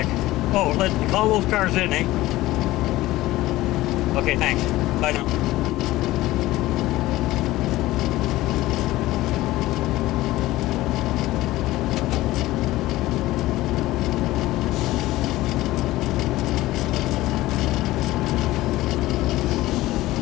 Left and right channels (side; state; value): right; quieter; 17.2 dB